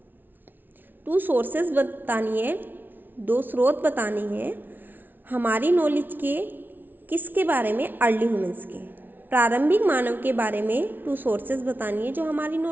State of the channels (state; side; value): late; left; 0.090 ms